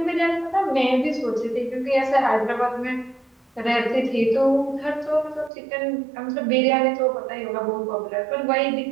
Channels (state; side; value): drops out; left; at 5.5 s